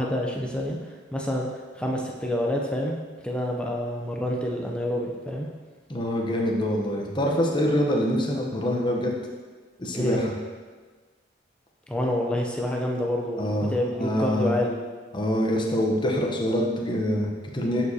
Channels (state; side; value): normal; both; correlation 0.68